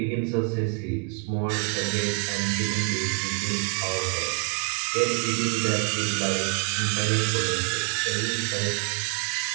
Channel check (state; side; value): quieter; left; 35.2 dB